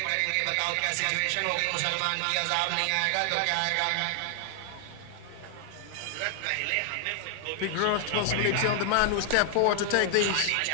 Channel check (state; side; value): different; both; correlation 0.00